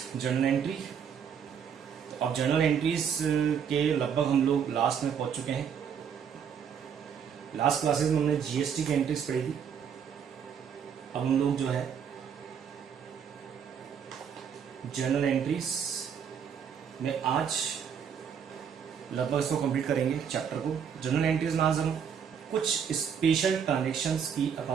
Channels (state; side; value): quieter; left; 7.6 dB